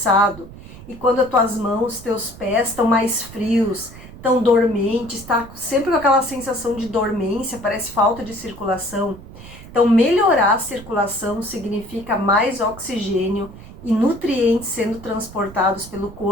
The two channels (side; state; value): right; noise; rumble, 17 dB below the sound